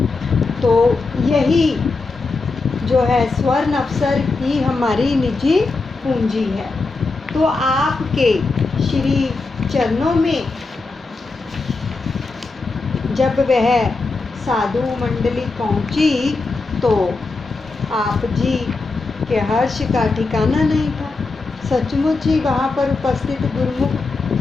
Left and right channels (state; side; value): quieter; right; 3.8 dB